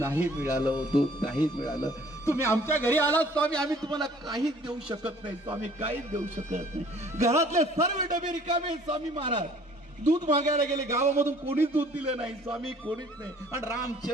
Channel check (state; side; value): normal; both; correlation 0.55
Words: मिळालं, दूध नाही मिळालं. तुम्ही आमच्या घरी आलात स्वामी, आम्ही तुम्हाला काहीच देऊ शकत नाही स्वामी, काहीच देऊ शकत नाही. घरातले सर्व डबे रिकामे स्वामी महाराज. दूध मागायला गेले, गावामधून कोणीच दूध दिलं नाही स्वामी, कोणीच नाही. आणि